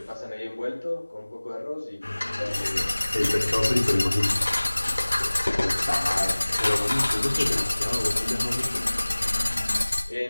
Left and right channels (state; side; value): inverted; both; correlation -1.00